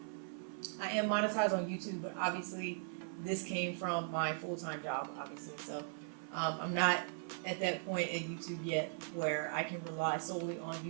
am monetized on YouTube, but obviously this came from my full-time job, obviously. So I'm not at that point at YouTube yet where I can rely solely on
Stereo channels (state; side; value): silent; left; 52 dB below the other